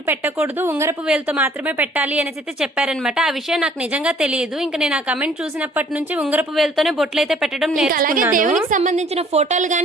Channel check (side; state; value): both; normal; correlation 0.57